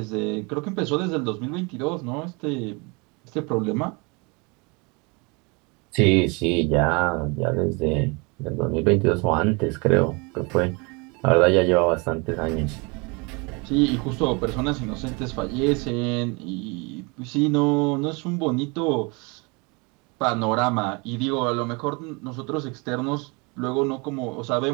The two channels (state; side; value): quieter; left; 29.5 dB